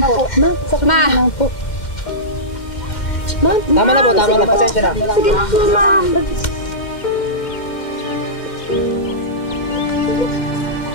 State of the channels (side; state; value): right; late; 2.1 ms